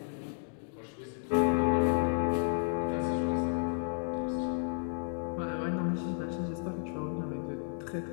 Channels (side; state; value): right; silent; digital silence